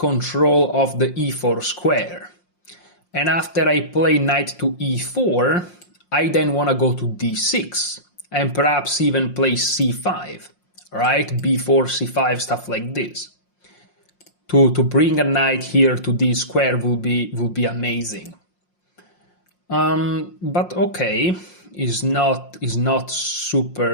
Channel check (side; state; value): right; late; 5.6 ms